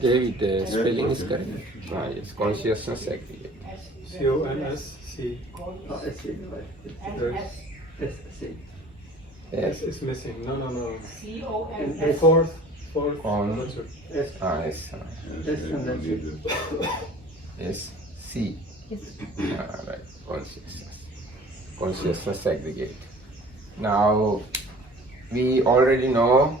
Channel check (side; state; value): both; normal; correlation 0.48